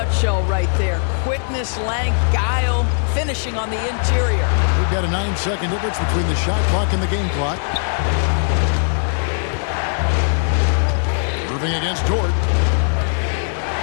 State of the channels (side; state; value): right; silent; digital silence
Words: right there. Quickness, length, guile, finishing on the interior. We've got a 9-second difference between the shot clock and the game clock. Irving against Dort.